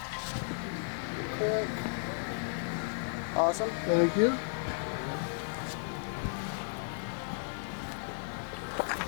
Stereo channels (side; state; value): right; silent; 55 dB below the other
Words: Quick. Awesome. Thank you.